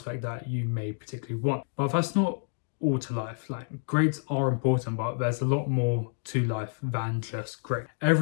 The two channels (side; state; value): right; silent; 58 dB below the other